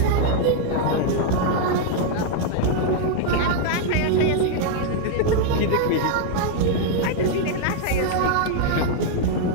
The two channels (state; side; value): different; both; correlation 0.00